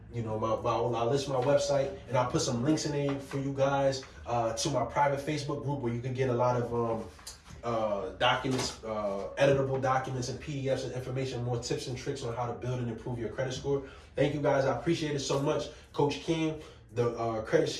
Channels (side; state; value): both; identical; correlation 1.00